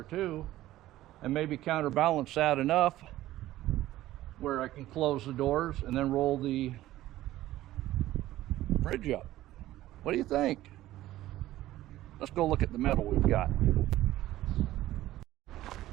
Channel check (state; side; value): quieter; left; 15.1 dB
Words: too, and maybe counterbalance that enough where I can close the doors and then roll the bridge up. What do you think? Let's go look at the metal we've got.